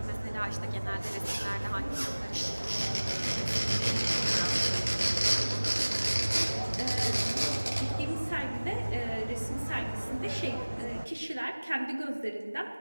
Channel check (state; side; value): inverted; both; correlation -1.00